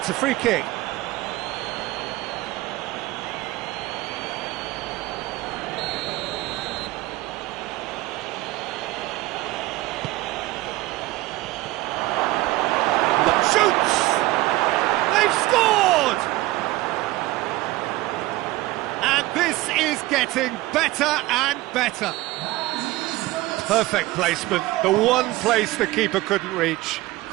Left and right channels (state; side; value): quieter; left; 18.5 dB